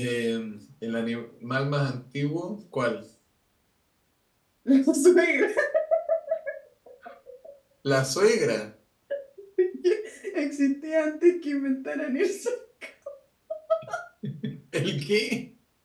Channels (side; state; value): both; identical; correlation 1.00